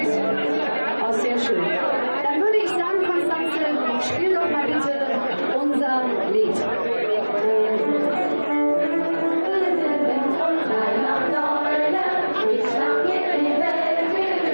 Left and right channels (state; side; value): inverted; both; correlation -1.00